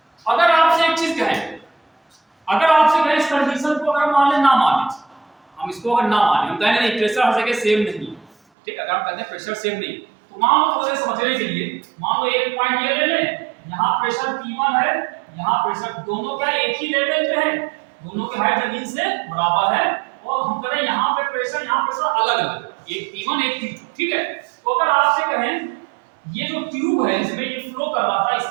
अगर आपसे एक चीज कहें, अगर आपसे कहें इस कंडीशन को अगर मान ले ना माने, हम इसको अगर ना माने, हम कहें नहीं प्रेशर हर जगह सेम नहीं, ठीक, अगर हम कहते हैं प्रेशर सेम नहीं, तो मान लो थोड़े समझने के लिए, मान लो एक पॉइंट ये ले लें, यहाँ प्रेशर P1 है, यहाँ प्रेशर, दोनों क्या एक ही लेवल पे है, दोनों की हाइट जमीन से बराबर है, और हम करें यहाँ पे प्रेशर, यहाँ प्रेशर अलग अलग, एक P1 एक P2, ठीक है। तो अगर आपसे कहें ये जो ट्यूब है इसमें ये फ्लो कर रहा था,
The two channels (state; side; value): drops out; left; at 8.3 s